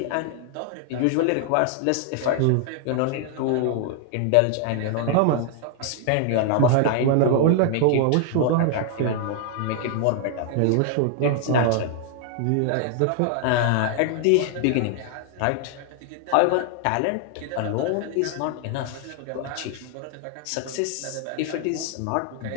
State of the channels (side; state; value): both; different; correlation 0.00